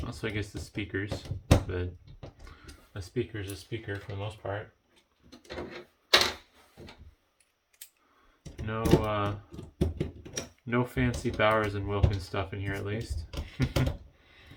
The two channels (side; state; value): both; identical; correlation 1.00